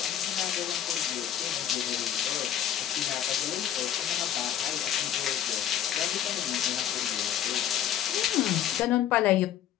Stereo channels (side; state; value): right; quieter; 10.2 dB